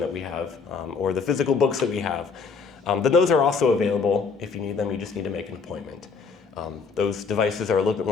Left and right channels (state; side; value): quieter; right; 5.2 dB